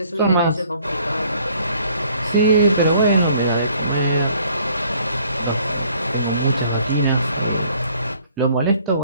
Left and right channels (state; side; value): inverted; both; correlation -0.60